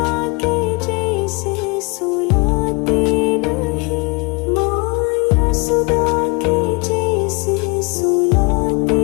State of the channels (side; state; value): right; quieter; 29.3 dB